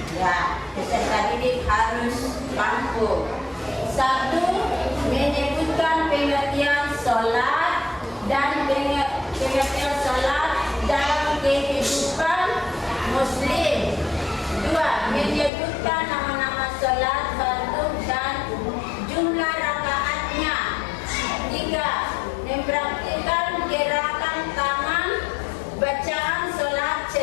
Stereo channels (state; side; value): drops out; right; at 15.5 s